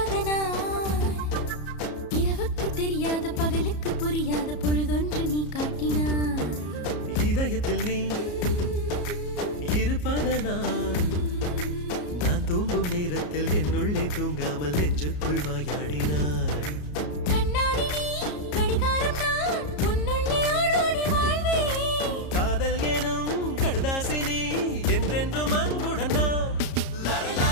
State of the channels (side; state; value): right; late; 33 ms